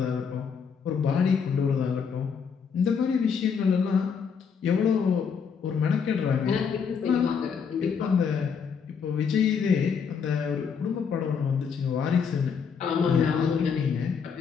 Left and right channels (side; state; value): right; quieter; 6.4 dB